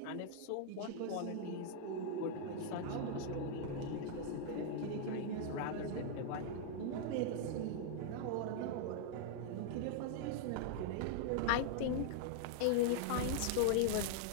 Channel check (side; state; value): both; different; correlation 0.00